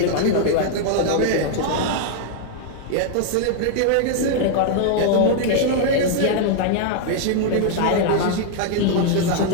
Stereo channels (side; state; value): both; different; correlation -0.01